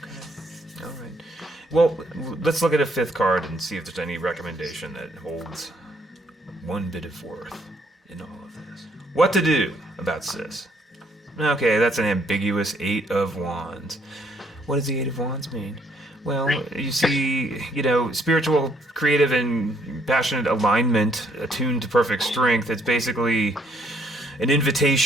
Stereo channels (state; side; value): normal; both; correlation 0.68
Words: All right. Well, let's look at a 5th card and see if there's any recommendation that holds one bit of worth in all of this. What to do about sis? Okay, that's an ambiguous 8 of Wands. What does the 8 of Wands mean? Well, you see, you know, spiritual, creative, and passionate alignment attuned to perfect strength. It's basically an